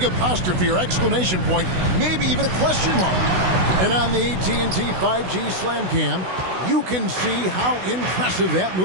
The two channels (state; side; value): late; left; 16 ms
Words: apostrophe or exclamation point, maybe even a question mark. And on the AT&T 5G Slam Cam, you can see how impressive that